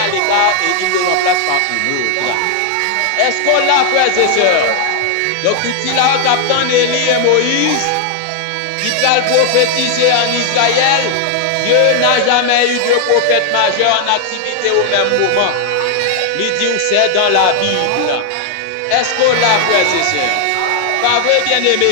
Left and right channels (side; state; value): both; different; correlation 0.00